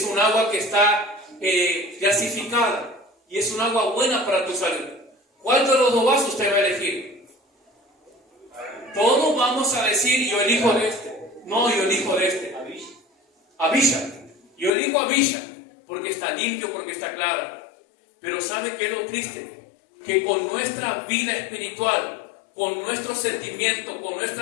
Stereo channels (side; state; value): right; drops out; at 14.7 s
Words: un agua que está gasificada y es un agua buena para tu salud. ¿Cuál de los 2 vasos usted va a elegir? Todos vamos a decir, yo elijo de este. No, yo elijo de este. Avilla. Yo elijo Avilla porque está limpio, porque está clara. Pero ¿sabe qué es lo triste? Que con nuestra vida espiritual, con nuestros sentimientos, con